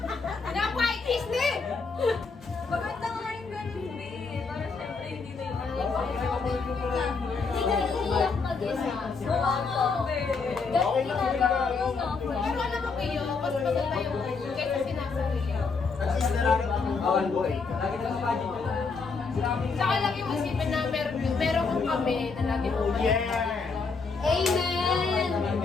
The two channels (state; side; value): quieter; right; 4.7 dB